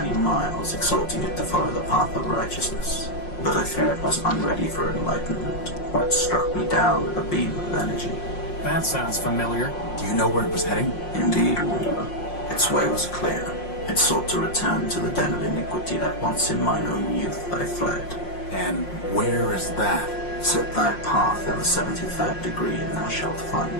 miles, exhorting it to follow the path of righteousness. But I fear it was unready for enlightenment, or it struck me down with a beam of energy. That sounds familiar. Do you know where it was heading? Indeed, Wanderer. Its way was clear. It sought to return to the den of iniquity that once in mine own youth I fled. And where is that? Set thy path in the 73rd degree, and thou shalt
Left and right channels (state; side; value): late; right; 5.6 ms